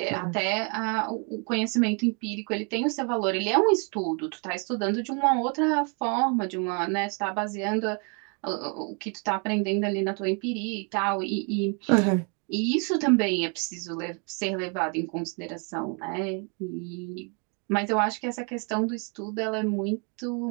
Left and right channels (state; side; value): quieter; left; 36.4 dB